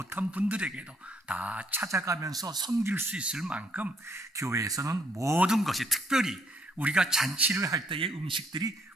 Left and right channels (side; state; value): both; normal; correlation 0.69